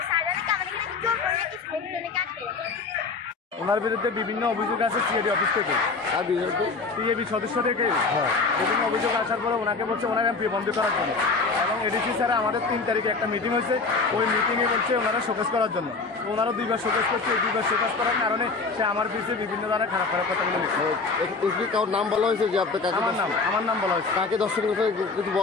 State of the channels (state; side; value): quieter; right; 4.3 dB